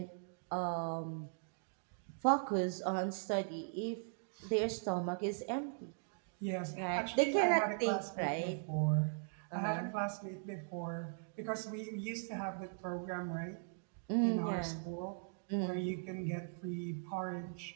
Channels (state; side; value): silent; left; digital silence